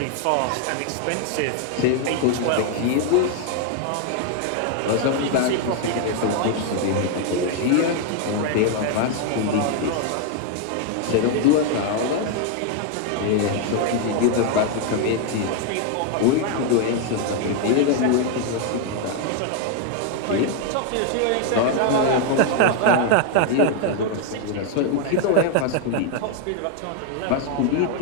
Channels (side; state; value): both; different; correlation 0.00